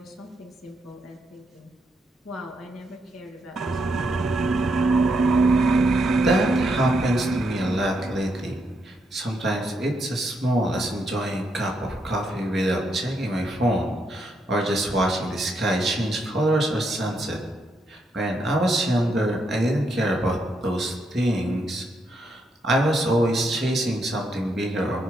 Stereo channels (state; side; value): normal; both; correlation 0.78